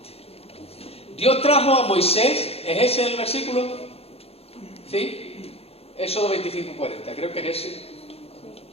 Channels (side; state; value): right; late; 0.29 ms